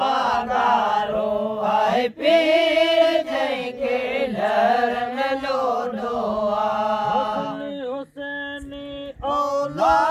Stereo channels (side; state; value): both; identical; correlation 1.00